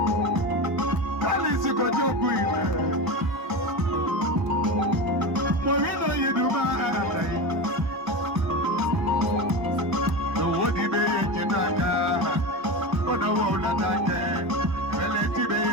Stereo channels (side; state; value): left; late; 1.1 ms